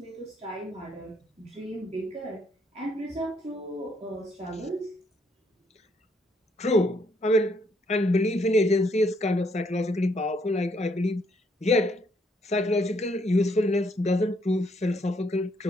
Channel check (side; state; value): both; normal; correlation 0.71